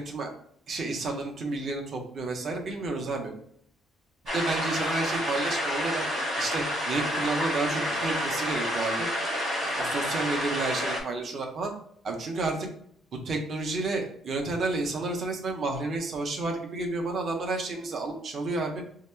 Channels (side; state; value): both; normal; correlation 0.69